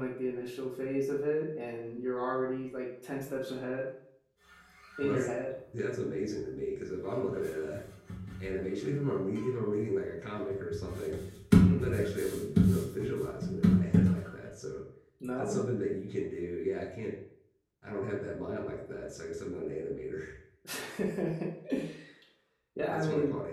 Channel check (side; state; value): both; identical; correlation 1.00